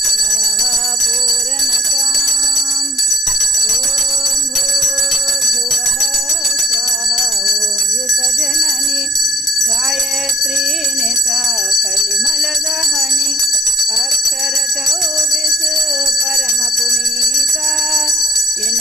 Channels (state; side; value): normal; both; correlation 0.51